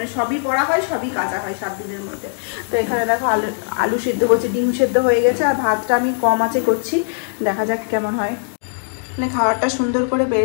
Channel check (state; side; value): silent; right; digital silence